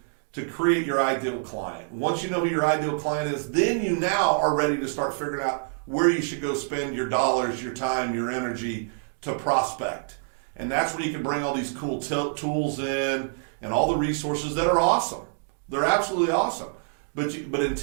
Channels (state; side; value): silent; left; digital silence